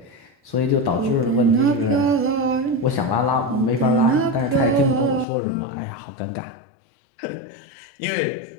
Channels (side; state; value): right; drops out; at 5.2 s